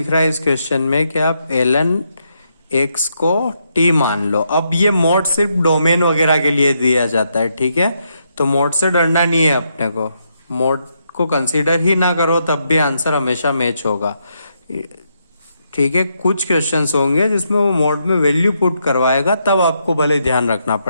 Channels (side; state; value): both; inverted; correlation -0.80